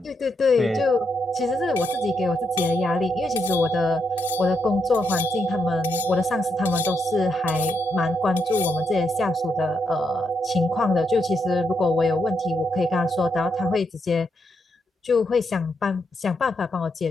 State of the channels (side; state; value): both; normal; correlation 0.81